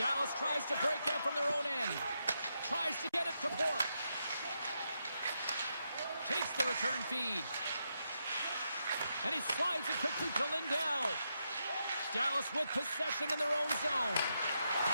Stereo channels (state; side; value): inverted; both; correlation -0.83